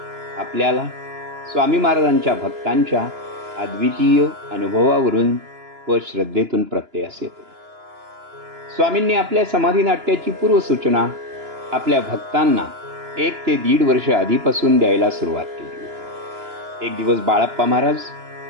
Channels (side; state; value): left; late; 2.9 ms